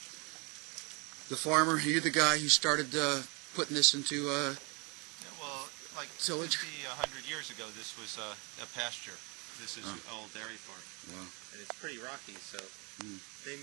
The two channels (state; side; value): quieter; left; 30.3 dB